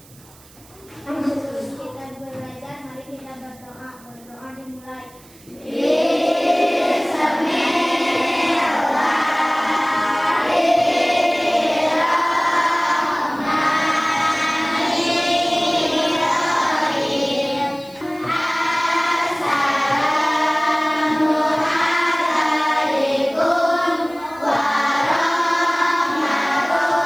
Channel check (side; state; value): right; noise; hiss, 25 dB below the sound